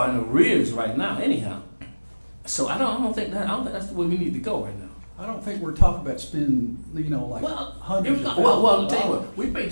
in arrears right now. Anyhow, so I don't think that's the way we need to go right now. I don't think we're talking about spending, hundreds of I'll tell you what, we pay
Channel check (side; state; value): both; inverted; correlation -1.00